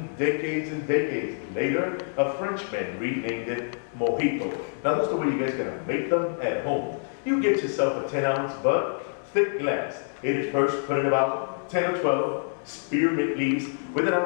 decades and decades later, a Frenchman renamed it Mojito. Now that's the way you guys are gonna make them at home. You get yourself a 10-ounce but thick glass. It is first put in about 10 or 12 spearmint leaves with an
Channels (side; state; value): right; silent; digital silence